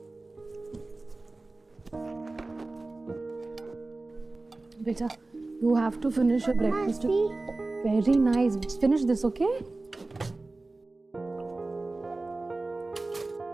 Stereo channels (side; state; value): left; quieter; 3.2 dB